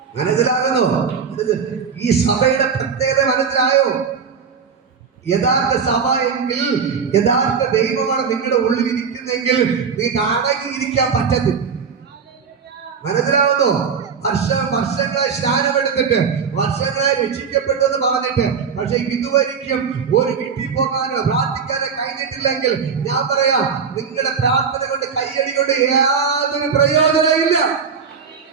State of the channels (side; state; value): left; quieter; 6.1 dB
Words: മനസ്സിലാകുന്നോ? ഈ സഭയുടെ പ്രത്യേകത മനസ്സിലായോ? യഥാർത്ഥ സഭ എങ്കിൽ, യഥാർത്ഥ ദൈവമാണ് നിങ്ങളുടെ ഉള്ളിൽ ഇരിക്കുന്നെങ്കിൽ നിങ്ങൾക്ക് അടങ്ങിയിരിക്കാൻ പറ്റത്തില്ല. മനസ്സിലാവുന്നോ? വർഷങ്ങളായി സ്നാനമെടുത്തിട്ട്, വർഷങ്ങളായി രക്ഷിക്കപ്പെട്ടു എന്ന് പറഞ്ഞിട്ട്, പക്ഷെ ഇതുവരെയും ഒരു വീട്ടിൽ പോകാനോ പ്രാർത്ഥിക്കാനോ കഴിഞ്ഞിട്ടില്ലെങ്കിൽ ഞാൻ പറയാം, നിങ്ങളുടെ പ്രാർത്ഥന കൊണ്ട് കയ്യടി കൊണ്ട് യാതൊരു പ്രയോജനമില്ല.